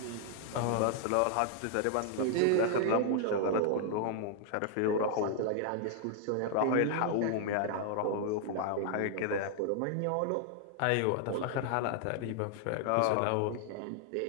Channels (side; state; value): both; different; correlation 0.00